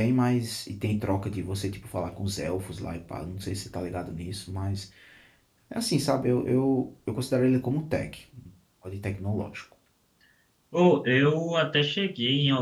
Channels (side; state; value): both; identical; correlation 1.00